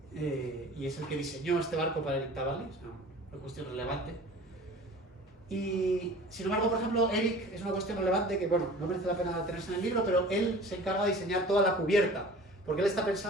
y es el que diseñó este barco para el Intavale, es una cuestión relevante. Y sin embargo, por ejemplo, Eric es una cuestión relevante que, bueno, no merece la pena tenerse en el libro, pero él se encarga de diseñar toda la cubierta, porque él está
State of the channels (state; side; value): normal; both; correlation 0.43